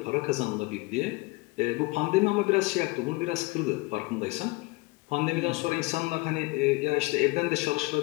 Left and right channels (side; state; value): right; quieter; 23.6 dB